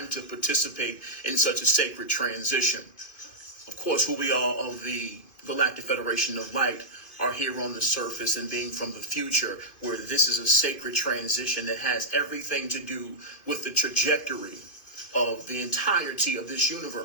to participate in such a sacred transition. Of course, who we are of the Galactic Federation of Light are here on the surface and being from the future, where this is a sacred transition that has everything to do with the trajectory of the entirety of this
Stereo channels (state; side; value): late; right; 2.6 ms